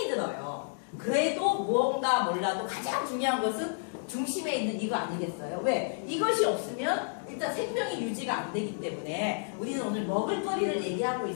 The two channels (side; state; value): right; silent; digital silence